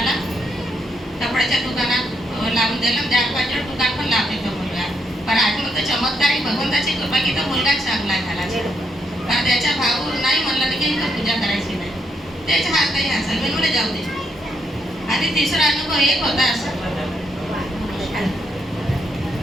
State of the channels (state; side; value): normal; both; correlation 0.77